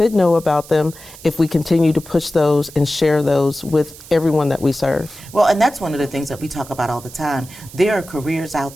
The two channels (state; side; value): noise; right; hiss, 18 dB below the sound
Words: know about them if we continue to push those and share those with everyone that we serve. Well, and that's one of the things that we talk about all the time. There are careers